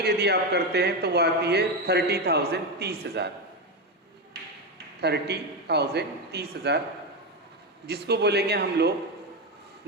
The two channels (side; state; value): both; normal; correlation 0.12